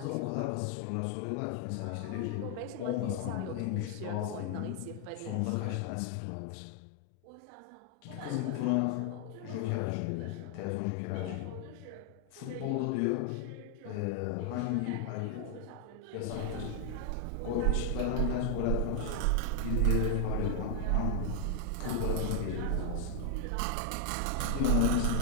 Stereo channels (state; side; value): different; both; correlation 0.00